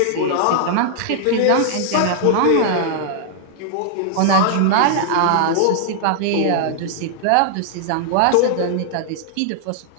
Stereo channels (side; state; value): both; different; correlation -0.01